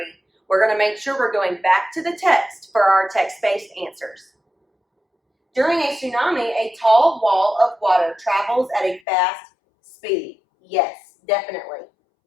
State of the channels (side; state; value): right; drops out; at 9.0 s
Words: We're going to make sure we're going back to the text for our text-based answers. During a tsunami, a tall wall of water travels at a fast speed. Yes, definitely.